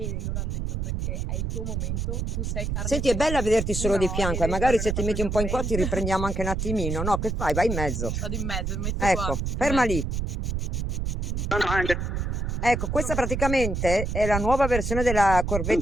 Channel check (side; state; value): right; noise; rumble, 2 dB below the sound